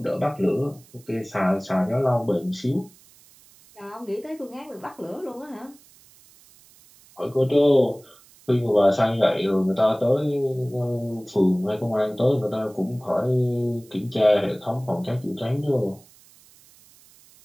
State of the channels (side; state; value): right; noise; hiss, 27 dB below the sound